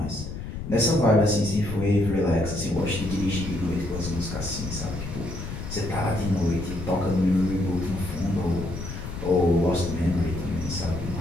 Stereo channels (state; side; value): noise; left; rumble, 7 dB below the sound